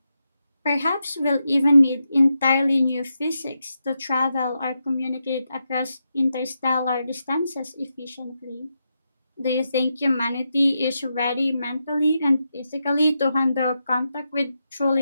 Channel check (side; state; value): both; inverted; correlation -0.86